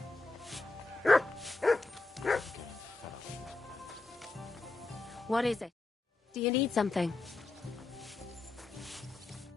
What is it? Do you need something?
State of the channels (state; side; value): quieter; right; 3.3 dB